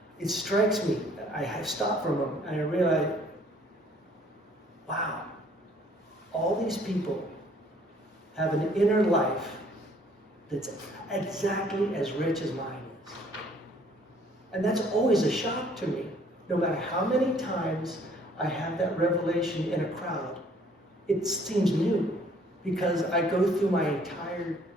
it strikes me that I have stopped for a moment and I realize, wow, all these people have an inner life that's exactly as rich as mine is. And that's always a shock to me. No matter how many times I have that revelation in a crowd, it seems new, because I go through my entire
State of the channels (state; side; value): normal; both; correlation 0.59